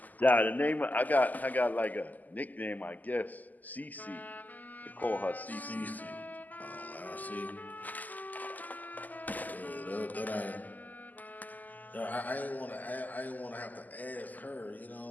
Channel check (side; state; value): right; late; 0.082 ms